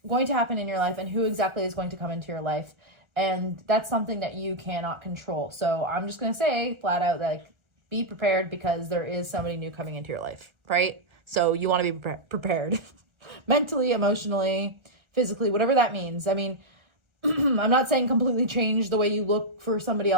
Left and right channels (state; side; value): late; left; 1.4 ms